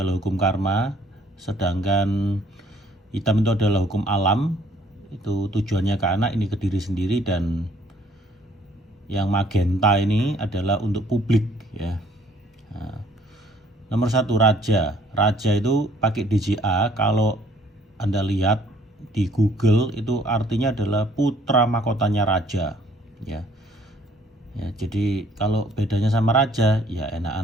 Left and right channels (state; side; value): normal; both; correlation 0.60